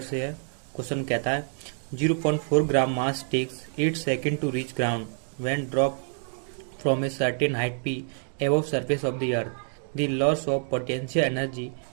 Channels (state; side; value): silent; left; 60 dB below the other